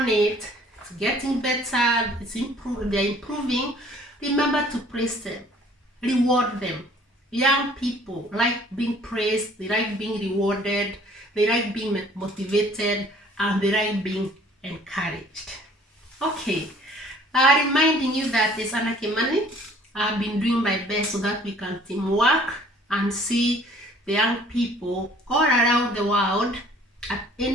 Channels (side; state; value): both; normal; correlation 0.55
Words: it, it's getting better, they're improving, remember to praise them, reward them. Young people like being praised, they like being rewarded, they like being motivated, and they like being encouraged. Okay, reminding you that it's Anna Kimani. I've been doing my best so that we can teamwork and see the young people all around the world at